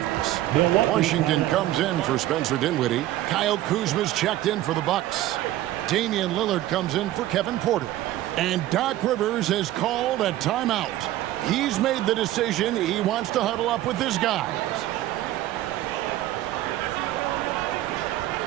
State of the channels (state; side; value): quieter; left; 14.6 dB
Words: Washington comes in for Spencer Dinwiddie. Kyle Kuzma's checked in for the Bucks. Damian Lillard comes in for Kevin Porter. And Doc Rivers has called a timeout. He's made the decision he wants to huddle up with his guys.